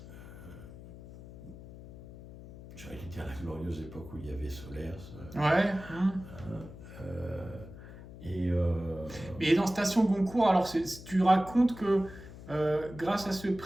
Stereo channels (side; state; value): left; noise; hum, 15 dB below the sound